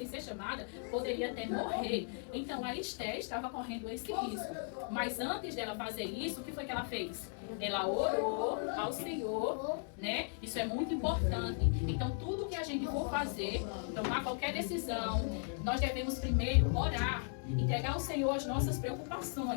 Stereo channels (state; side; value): silent; right; 53 dB below the other